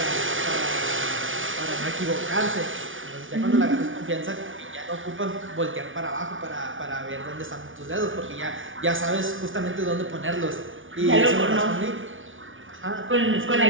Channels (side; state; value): left; late; 0.57 ms